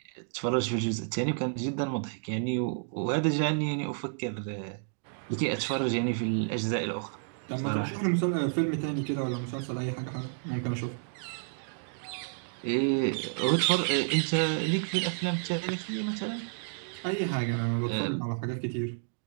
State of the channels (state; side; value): silent; left; digital silence